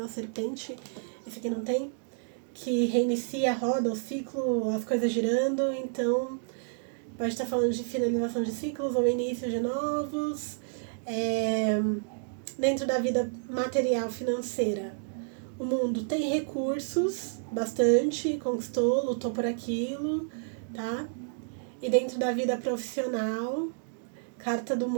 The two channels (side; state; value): left; silent; digital silence